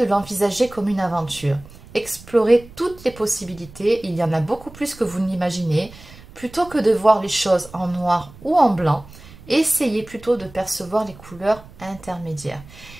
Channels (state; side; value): noise; right; rumble, 20 dB below the sound